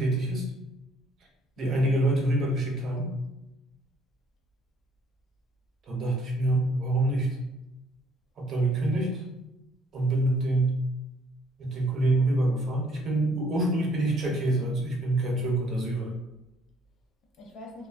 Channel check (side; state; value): both; normal; correlation 0.63